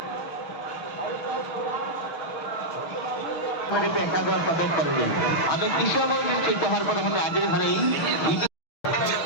আমি কৃষক হওয়ার পরে আমরা আগের ঘরেই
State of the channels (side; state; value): right; late; 6.5 ms